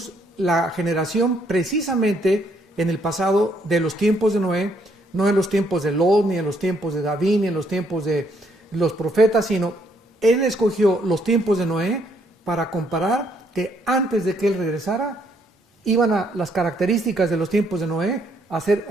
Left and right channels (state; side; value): normal; both; correlation 0.70